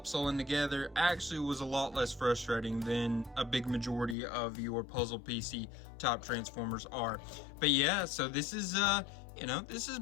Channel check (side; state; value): right; drops out; at 4.2 s